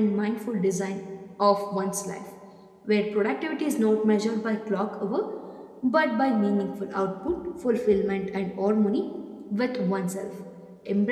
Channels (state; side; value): identical; both; correlation 1.00